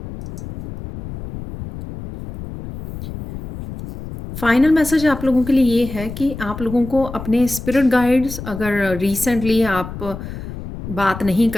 फाइनल मैसेज आप लोगों के लिए ये है कि आप लोगों को अपने स्पिरिट गाइड्स, अगर रिसेंटली आप बात नहीं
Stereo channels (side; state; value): left; noise; rumble, 10 dB below the sound